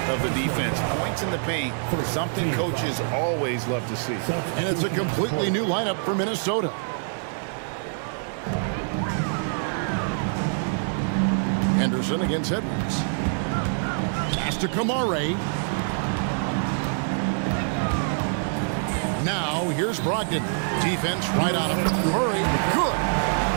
of the defense. Points in the paint, something coaches always love to see. And it's a completely new lineup for Minnesota. Henderson against Edwards. Pass to Kamare. Now here's Brogdon. Defense right on him. Murray, good.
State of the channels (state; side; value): silent; left; digital silence